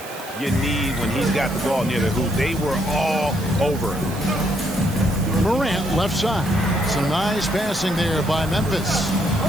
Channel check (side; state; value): right; noise; hiss, 15 dB below the sound